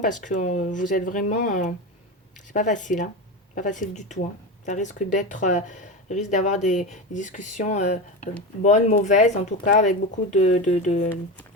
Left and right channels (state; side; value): normal; both; correlation 0.22